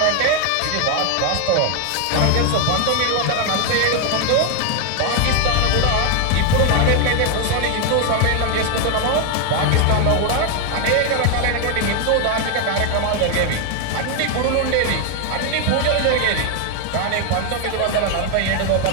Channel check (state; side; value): different; both; correlation 0.01